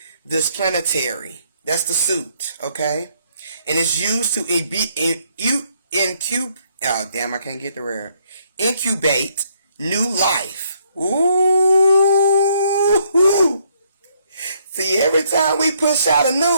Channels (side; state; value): both; inverted; correlation -0.70